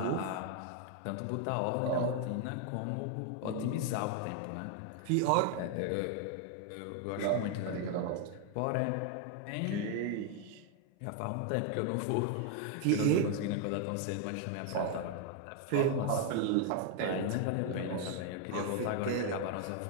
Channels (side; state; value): both; different; correlation 0.00